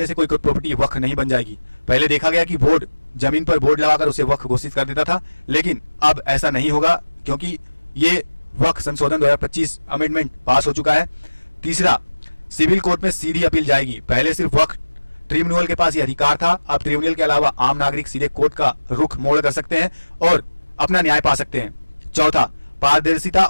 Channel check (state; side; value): inverted; both; correlation -1.00